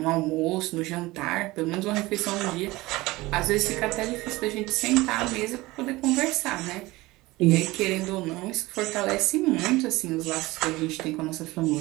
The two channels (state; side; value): quieter; left; 20.3 dB